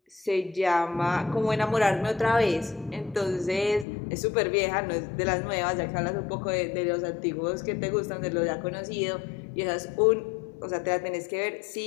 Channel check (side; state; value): right; drops out; at 3.9 s